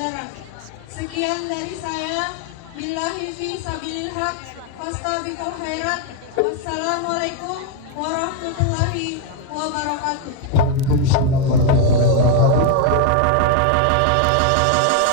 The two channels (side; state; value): both; different; correlation 0.01